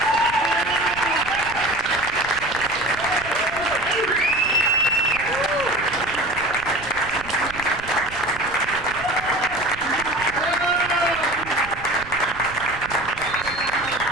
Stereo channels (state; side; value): noise; right; rumble, 16 dB below the sound